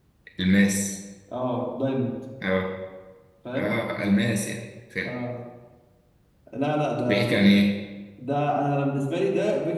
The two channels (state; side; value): identical; both; correlation 1.00